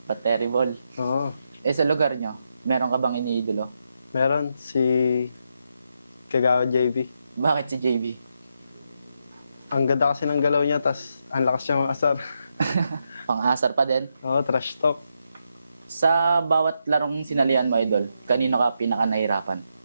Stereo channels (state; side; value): inverted; both; correlation -0.82